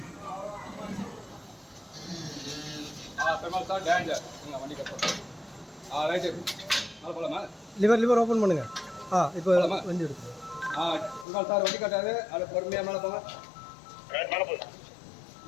பெருமாள் சார் டேஞ்சர் வண்டி கட்டுறோம். ரைட்டு மேலே போகலாமா? லிவர் ஓப்பன் பண்ணுங்க. இப்போ வண்டி எடுத்து பெருமாள் சார் வண்டி கட்டாது அதை பொறுமையாக மேலே போங்க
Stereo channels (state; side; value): drops out; right; at 11.2 s